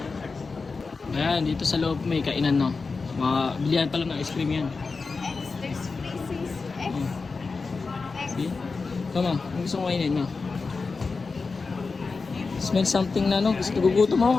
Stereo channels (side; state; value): right; quieter; 4.4 dB